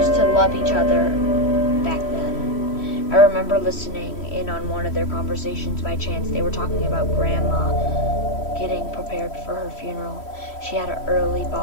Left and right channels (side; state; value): right; late; 3.1 ms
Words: to love each other back then. I remember listening in on one of their conversations by chance. They were talking about Grandma getting prepared for her funeral. She had an early